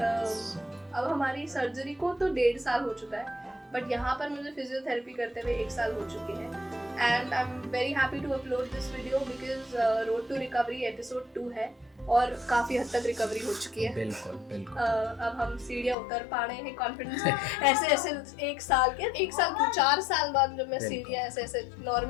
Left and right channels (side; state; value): right; drops out; at 16.0 s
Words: हमारी सर्जरी को तो 1.5 साल हो चुका है, बट यहाँ पर मुझे फिजियोथेरेपी करते हुए 1 साल हो चुके हैं। And I am very happy to upload this video because road to recovery episode 2 है और काफ़ी हद तक रिकवरी हो चुकी है। बिल्कुल। अब हम सीढ़ियाँ उतर पा रहे हैं कॉन्फिडेंस से। ऐसे 1 साल क्यों 4 साल बाद जब मैं सीढ़ियाँ ऐसे